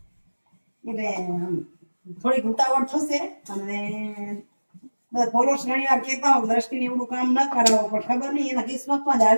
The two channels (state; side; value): inverted; both; correlation -1.00